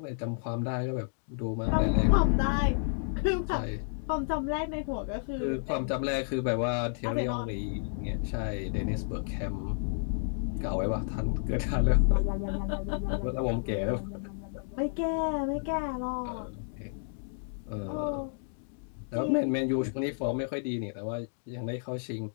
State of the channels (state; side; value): silent; right; digital silence